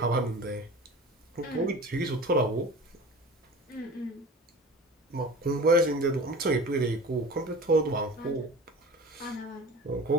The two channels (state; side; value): normal; both; correlation 0.38